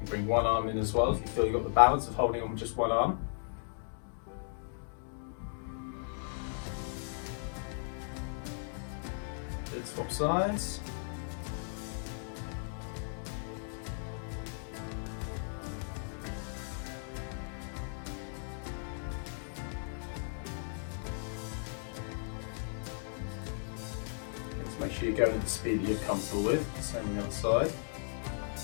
bring one arm in as well if you feel you've got the balance of holding on with just one arm. Good, swap sides. Make sure you're going at the speed that you're comfortable with. Same on the other side.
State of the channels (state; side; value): silent; right; digital silence